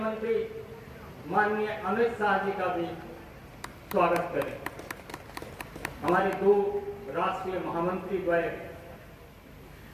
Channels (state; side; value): identical; both; correlation 1.00